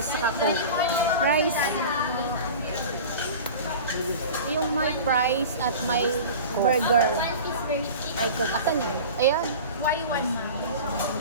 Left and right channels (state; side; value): inverted; both; correlation -0.36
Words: saka Coke. Rice. Yung may price at may burger. May Coke. Asan yun? Ayan. Y1 ma'am.